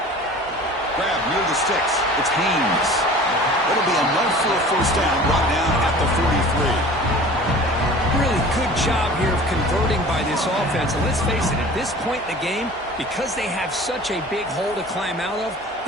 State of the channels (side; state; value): both; normal; correlation 0.43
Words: Grab near the sticks. It's Haynes. That'll be enough for a first down, brought down at the 43. Really good job here of converting by this offense. And let's face it, at this point in the game, because they have such a big hole to climb out of,